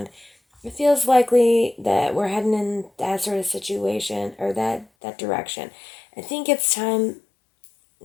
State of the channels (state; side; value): drops out; right; at 4.9 s